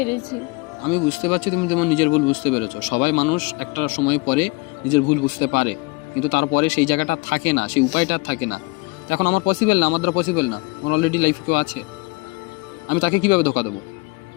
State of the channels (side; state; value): right; quieter; 26.0 dB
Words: আমি বুঝতে পারছি তুমি তোমার নিজের ভুল বুঝতে পেরেছো। সবাই মানুষ একটা সময় পরে নিজের ভুল বুঝতে পারে, কিন্তু তারপরে সেই জায়গাটা থাকে না, সেই উপায়টা থাকে না। এখন আমার পসিবল না, আমার দ্বারা পসিবল না। আমার অলরেডি লাইফে কেউ আছে, আমি তাকে কিভাবে ধোকা দেবো?